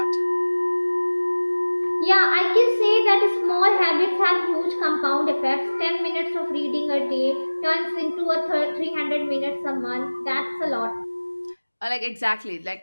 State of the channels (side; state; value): both; inverted; correlation -1.00